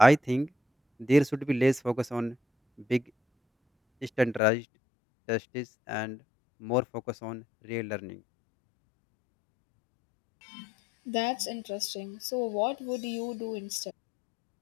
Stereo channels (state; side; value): drops out; right; at 4.4 s